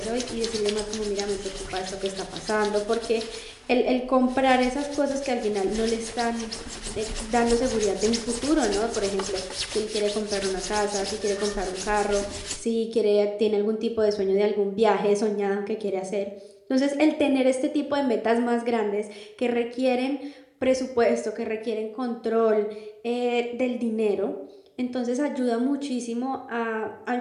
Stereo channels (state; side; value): identical; both; correlation 1.00